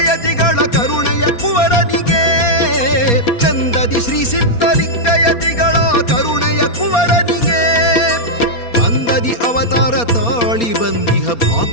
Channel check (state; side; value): late; right; 4.3 ms